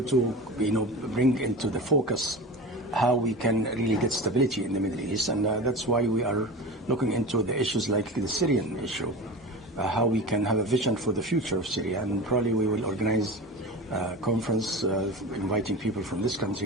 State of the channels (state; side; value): normal; both; correlation 0.30